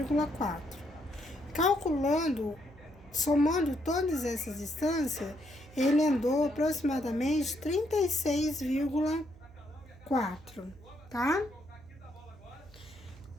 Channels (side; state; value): right; noise; hum, 22 dB below the sound